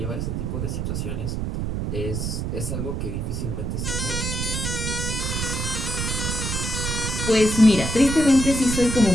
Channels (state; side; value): noise; right; rumble, 2 dB below the sound